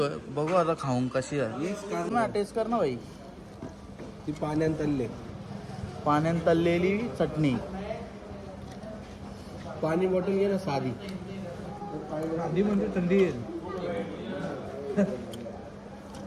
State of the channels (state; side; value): identical; both; correlation 1.00